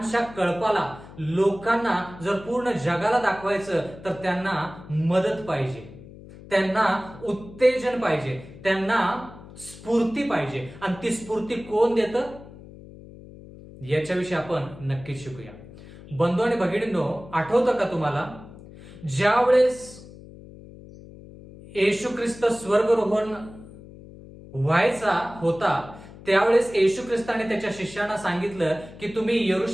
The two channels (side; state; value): left; noise; hum, 18 dB below the sound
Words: कळपाला लोकांना जर पूर्ण जगाला दाखवायचं तर त्यांना मदत पाहिजे, त्यांना उत्तेजन पाहिजे, त्यांना स्फूर्ती पाहिजे. आणि ती स्फूर्ती कोण देतं याच्याविषयी आपण नक्कीच शिकूया. बंधू आणि भगिनींनो, आठवतं का तुम्हाला ज्यावेळेस येशू ख्रिस्त स्वर्गरोहण व्हायचा होता त्यावेळेस येशू ख्रिस्ताने त्याच्या शिष्यांना सांगितलं की तुम्ही